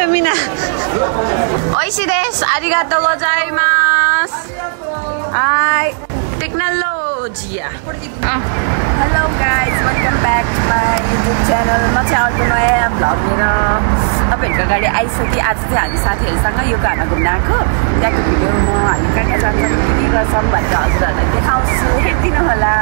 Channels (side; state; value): left; silent; digital silence